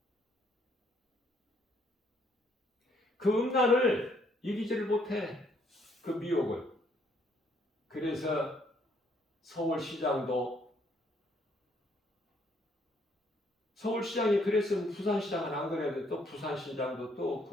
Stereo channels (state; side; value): normal; both; correlation 0.68